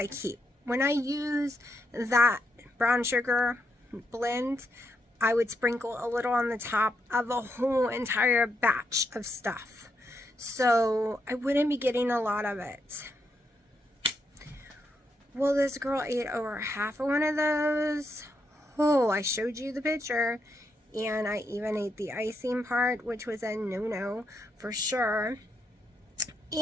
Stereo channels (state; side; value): normal; both; correlation 0.80